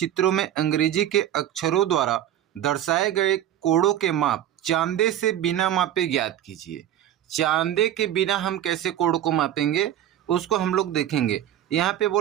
में अंग्रेजी के अक्षरों द्वारा दर्शाए गए कोड़ों के माप चांदे से बिना मापे ज्ञात कीजिए। चांदे के बिना हम कैसे कोड़ को मापेंगे उसको हम लोग देखेंगे। यहाँ पे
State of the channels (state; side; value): quieter; left; 11.5 dB